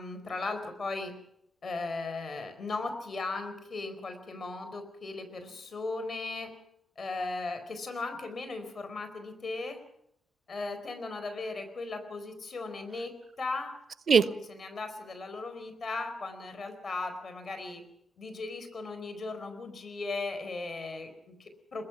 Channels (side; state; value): both; normal; correlation 0.82